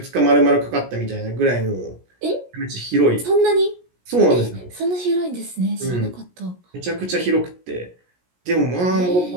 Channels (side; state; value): left; late; 17 ms